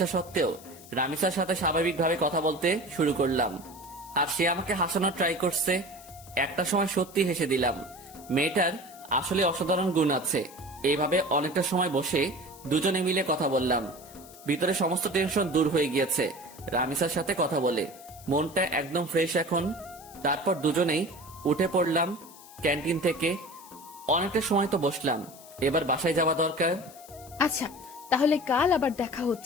সত্ত্বেও রামিসার সাথে স্বাভাবিকভাবে কথা বলতে শুরু করলাম, আর সে আমাকে হাসানোর ট্রাই করছে। একটা সময় সত্যি হেসে দিলাম। মেয়েটার আসলে অসাধারণ গুণ আছে। এইভাবে অনেকটা সময় বসে দুজনে মিলে কথা বললাম। ভিতরে সমস্ত টেনশন দূর হয়ে গিয়েছে রামিসার সাথে কথা বলে। মনটা একদম ফ্রেশ এখন। তারপর দুজনেই উঠে পড়লাম ক্যান্টিন থেকে। অনেকটা সময় তো বসলাম, এবার বাসায় যাওয়া দরকার। আচ্ছা, তাহলে কাল আবার দেখা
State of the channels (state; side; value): noise; left; hiss, 20 dB below the sound